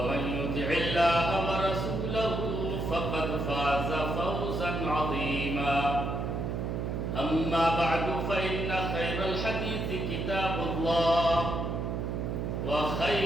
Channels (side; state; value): right; noise; hum, 2 dB below the sound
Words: يطع الله ورسوله فقد فاز فوزا عظيما أما بعد فإن خير الحديث كتاب الله